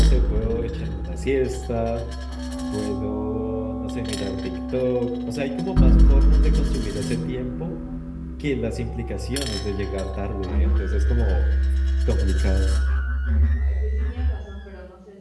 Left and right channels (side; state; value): both; identical; correlation 1.00